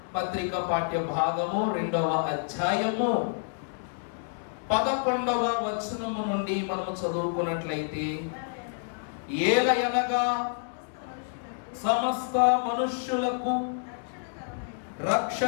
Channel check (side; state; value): right; silent; digital silence